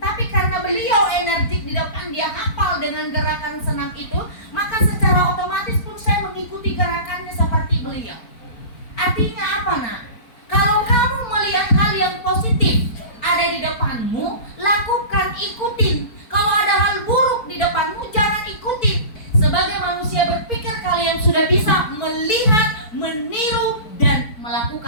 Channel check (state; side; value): late; right; 4.5 ms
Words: Tapi karena beliau energik di depan, dia hafal dengan gerakan senam itu, maka secara otomatis pun saya mengikuti gerakannya seperti beliau. Artinya apa nak? Kalau kamu melihat hal yang positif ada di depanmu, lakukan, ikutin. Kalau ada hal buruk di depanmu, jangan ikutin. Sebagai manusia berpikir, kalian sudah bisa melihat, meniru, dan